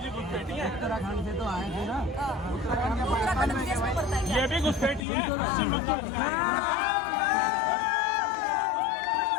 जी घुसपैठी है, उत्तराखंड से तो आए थे ना। उत्तराखंड विदेश में पड़ता है क्या? ये भी घुसपैठी है। पश्चिम बंगाल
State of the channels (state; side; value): drops out; right; at 5.0 s